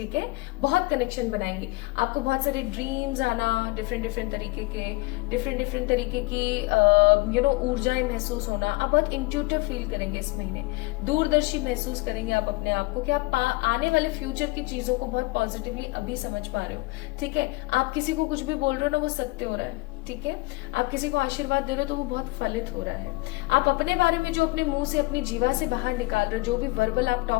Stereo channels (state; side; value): quieter; right; 23.5 dB